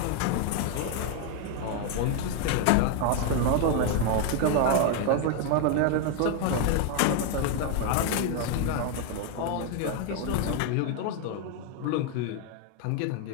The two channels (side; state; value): both; different; correlation 0.01